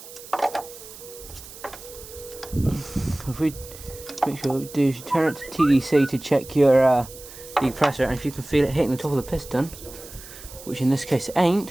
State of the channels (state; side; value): noise; right; hiss, 16 dB below the sound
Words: If we make sure what we do is you turn it to TDC to check your decompressor, and if you can feel it hitting the top of the piston, which in this case it